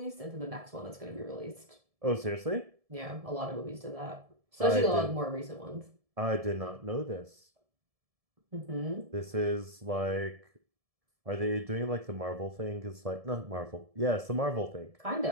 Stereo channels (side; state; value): left; late; 1.7 ms